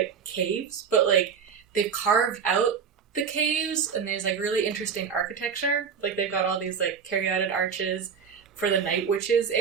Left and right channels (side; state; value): left; quieter; 6.6 dB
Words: caves, but like they've carved out the caves, and there's like really interesting architecture. Like they've got all these like caryatid arches for the Night Witches